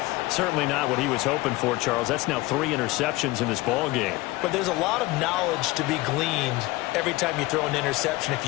Certainly not what he was hoping for, Charles. That's now 3 interceptions in this ball game. But there's a lot of knowledge to be gleaned every time you throw an interception if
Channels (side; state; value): right; quieter; 20.2 dB